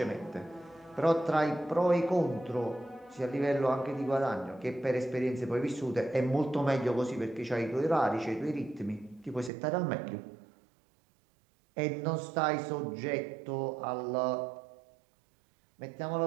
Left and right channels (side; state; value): left; drops out; at 9.5 s